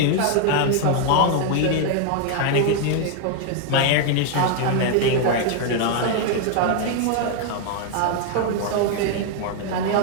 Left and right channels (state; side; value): different; both; correlation 0.00